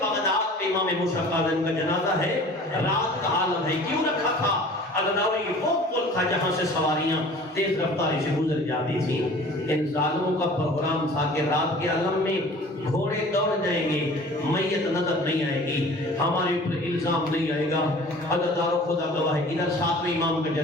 بغداد میں امام موسیٰ قاظم کا جنازہ ہے، رات کا عالم ہے، کیوں رکھا تھا؟ عزاداری وہ پل تھا جہاں سے سواریاں تیز رفتاری سے گزر جاتی تھیں۔ ان ظالموں کا پروگرام تھا کہ رات کے عالم میں گھوڑے دوڑ جائیں گے، میت نظر نہیں آئے گی، ہمارے اوپر الزام نہیں آئے گا۔ عزادارو خدا گواہ ہے ادھر 7ویں امام کا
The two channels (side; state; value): both; normal; correlation 0.45